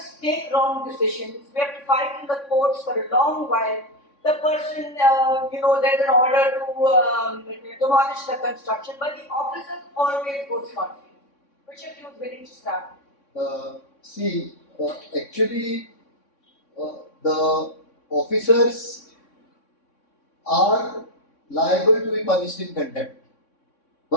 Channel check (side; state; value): right; late; 3.6 ms